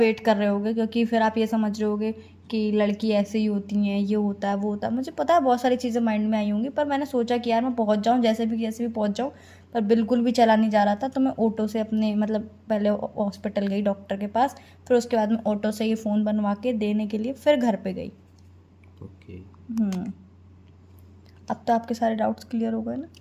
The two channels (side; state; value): both; identical; correlation 1.00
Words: कर रहे होगे, क्योंकि फिर आप ये समझ रहे होगे कि लड़की ऐसे ही होती हैं, ये होता है वो होता है। मुझे पता है बहुत सारी चीज़ें माइंड में आई होंगी, पर मैंने सोचा कि यार मैं पहुँच जाऊँ, जैसे भी पहुँच जाऊँ। पर बिल्कुल भी चला नहीं जा रहा था, तो मैं ऑटो से अपने मतलब पहले हॉस्पिटल गई डॉक्टर के पास, फिर उसके बाद मैं ऑटो से ये फ़ोन बनवा के देने के लिए फिर घर पे गई। ओके। अब तो आपके सारे डाउट्स क्लियर हो गए ना?